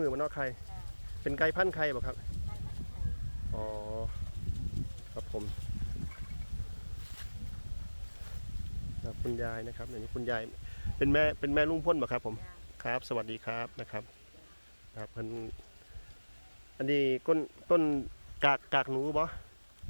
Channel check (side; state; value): both; inverted; correlation -1.00